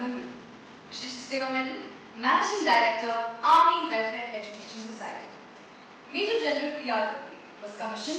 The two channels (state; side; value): identical; both; correlation 1.00